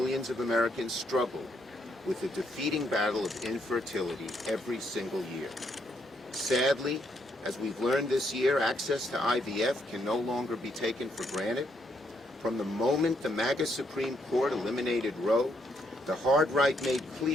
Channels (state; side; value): normal; both; correlation 0.74